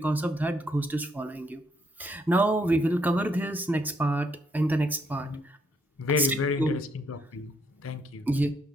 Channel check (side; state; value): both; normal; correlation 0.72